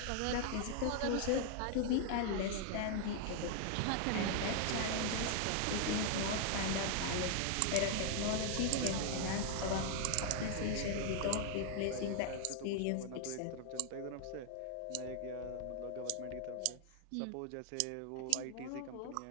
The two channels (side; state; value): both; different; correlation 0.00